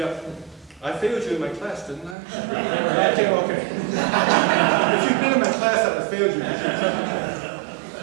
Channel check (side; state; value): left; drops out; at 2.1 s